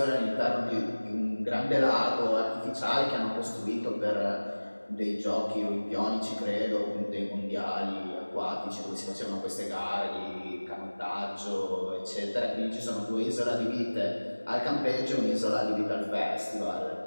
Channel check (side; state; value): both; inverted; correlation -1.00